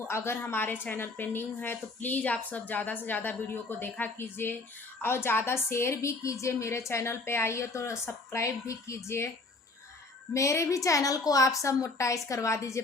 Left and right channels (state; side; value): quieter; right; 3.3 dB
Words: अगर हमारे चैनल पे न्यू है तो प्लीज़ आप सब ज़्यादा से ज़्यादा वीडियो को देखा कीजिए और ज़्यादा शेयर भी कीजिए। मेरे चैनल पे आइए तो सब्सक्राइब भी कीजिए। मेरे भी चैनल को आप सब मोनेटाइज करवा दीजिए